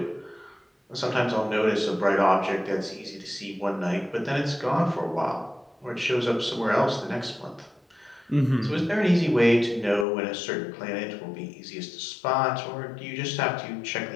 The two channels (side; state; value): right; drops out; at 10.1 s